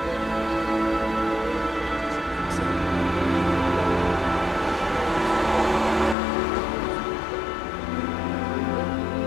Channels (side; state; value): right; drops out; at 6.2 s